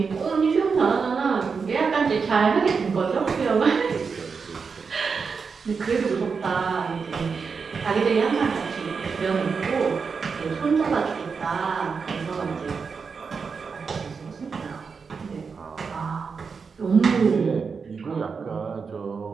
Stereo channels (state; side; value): quieter; left; 5.4 dB